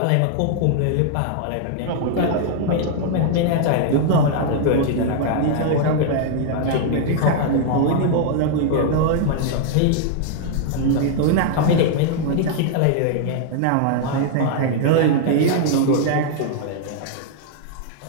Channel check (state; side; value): different; both; correlation -0.01